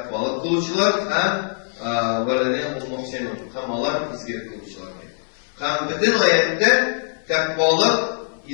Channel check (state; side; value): silent; right; 63 dB below the other